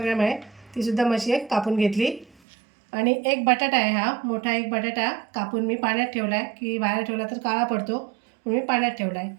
ग्रॅम आहे, तीसुद्धा मशी एक कापून घेतली. आणि एक बटाटा आहे, हा मोठा एक बटाटा कापून मी पाण्यात ठेवला आहे, की बाहेर ठेवला तर काळा पडतो म्हणून मी पाण्यात ठेवला आहे.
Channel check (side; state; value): left; drops out; at 2.4 s